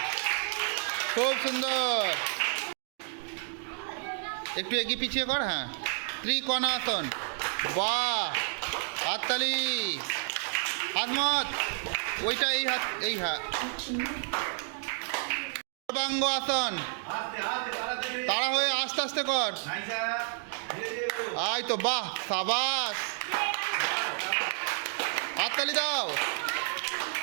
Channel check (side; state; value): left; silent; 58 dB below the other